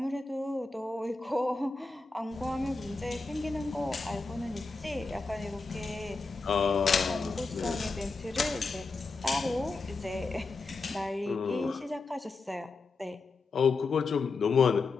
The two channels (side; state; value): right; quieter; 3.9 dB